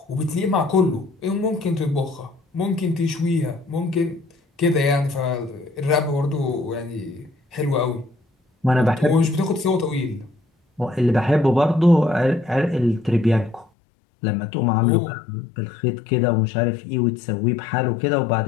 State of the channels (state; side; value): drops out; right; at 13.7 s